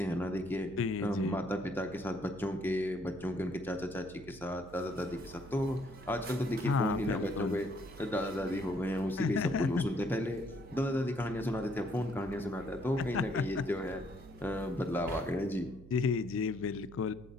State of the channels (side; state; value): right; noise; hum, 18 dB below the sound